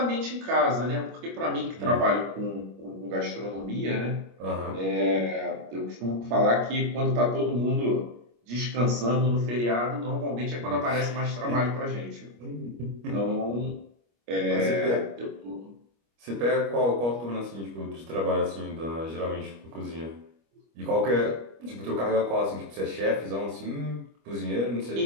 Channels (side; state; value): left; late; 25 ms